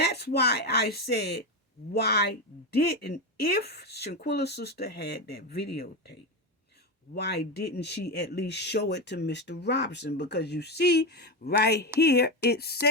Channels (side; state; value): both; normal; correlation 0.14